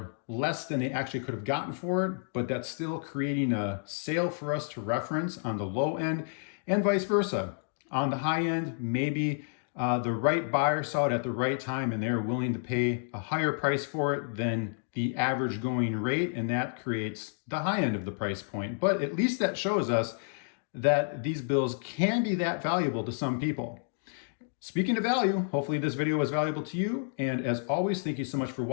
less than they actually could have gotten for it, but that's still creating a sale for us to reference on the low end, and vice versa. On the high end, maybe the right buyer saw it at the right time and they're willing to pay a higher price for it than the average going rate, and that creates the high end of the price point. But at least that shows us that these bills can be that valuable to some people. Speaking of value, hopefully this video was valuable to you. And as always, thank you so much for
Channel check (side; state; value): right; silent; digital silence